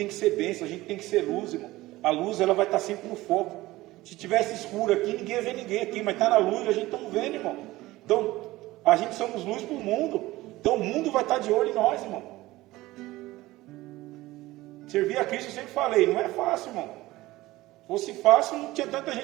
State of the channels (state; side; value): quieter; left; 18.2 dB